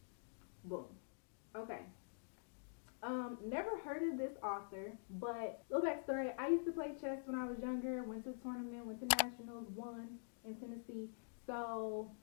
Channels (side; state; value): right; silent; digital silence